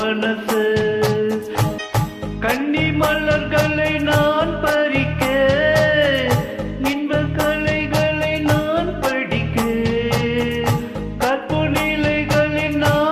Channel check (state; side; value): identical; both; correlation 1.00